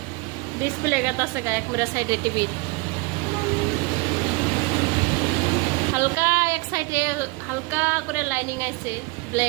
ডিসপ্লে গাতাছে, এক মুড়া সাইডে টিভি হালকা, এক সাইডে হালকা করে লাইনিং আইছে,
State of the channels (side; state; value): left; quieter; 26.2 dB